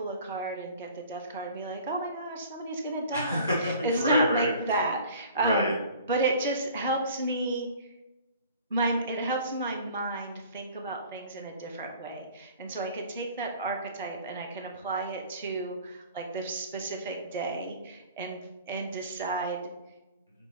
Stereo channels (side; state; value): both; inverted; correlation -0.48